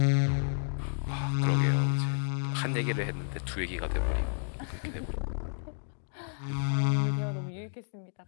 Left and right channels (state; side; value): silent; right; digital silence